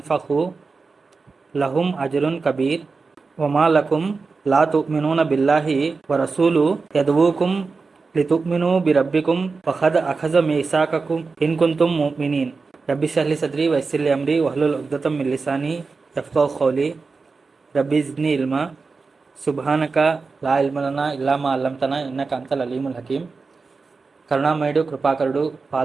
लहुम अज्रुन कबीर वमा लकुम ला तुमिनून बिल्लाहि व रसूलु यदऊकुम लितुमिनु बिरब्बिकुम फ़क़द अख़ज़ मीसाक़कुम इन कुंतुम मुमिनीन रब्बि इश्रह लि सद्री व यस्सिर लि अम्री वहलुल उक़्दतम मिन लिसानी यफ़क़हू क़ौली रब्बि ज़िदनी इल्मा సుబ్హానక లా ఇల్మ లనా ఇల్లా మా అల్లమ్తనా ఇన్నక అంతల్ అలీముల్ హకీం. కరుణామయుడు, కృపాకరుడు,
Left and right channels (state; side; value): quieter; left; 4.4 dB